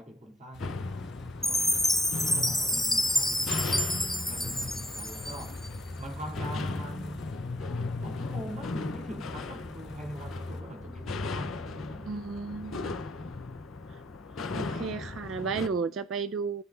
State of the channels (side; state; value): both; normal; correlation 0.63